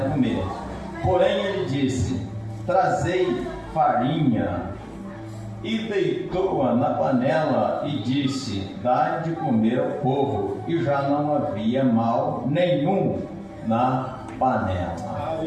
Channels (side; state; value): both; identical; correlation 1.00